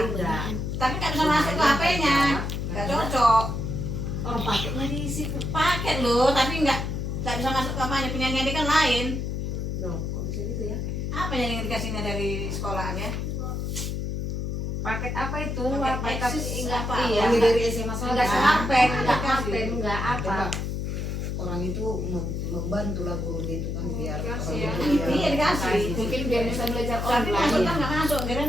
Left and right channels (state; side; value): noise; left; hum, 2 dB below the sound